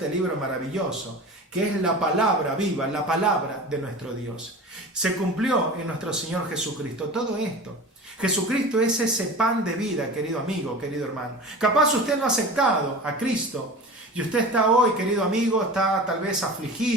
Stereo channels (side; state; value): both; normal; correlation 0.34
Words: libro maravilloso, que es la palabra viva, la palabra de nuestro Dios. Se cumplió en nuestro Señor Jesucristo todo esto. Jesucristo es ese pan de vida, querido amigo, querido hermano. Capaz usted no ha aceptado a Cristo y usted está hoy, querido amigo, está tal vez